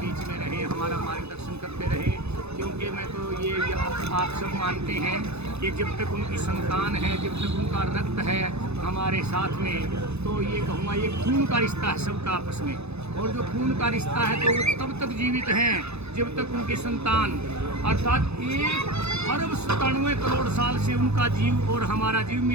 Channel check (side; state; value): left; late; 0.80 ms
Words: में रहे, हमारा मार्गदर्शन करते रहे। क्योंकि मैं तो ये आप सब मानते हैं कि जब तक उनकी संतान है, जब तक उनका रक्त है हमारे साथ में, तो ये कहूँगा ये खून का रिश्ता है सबका आपस में। और जो खून का रिश्ता है तो वो तब तक जीवित हैं जब तक उनकी संतान, अर्थात 1 अरब 97 करोड़ साल से उनका जीव और हमारा जीव